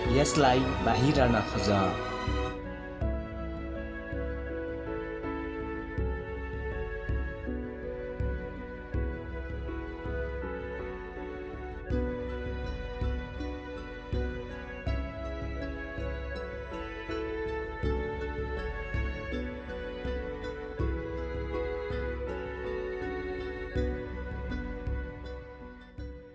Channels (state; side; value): identical; both; correlation 1.00